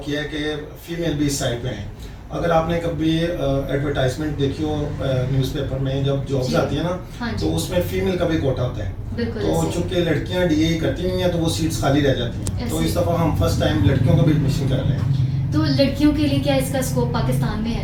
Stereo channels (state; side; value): identical; both; correlation 1.00